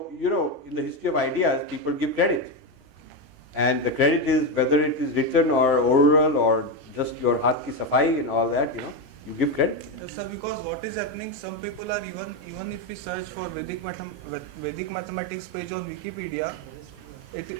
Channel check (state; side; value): late; left; 31 ms